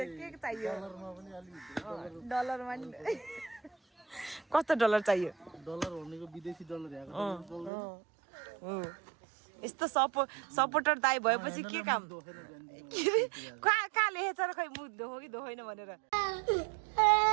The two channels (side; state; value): left; drops out; at 7.7 s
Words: के चाहियो डलरमा पनि अलि डलरमा नि कस्तो डलर चाहियो डलर भनेको विदेशी डलर हो यस्तो सपोर्टर दाइ भएपछि के काम कहाँ लेखेछ र खै मुख धो कि धोइन भनेर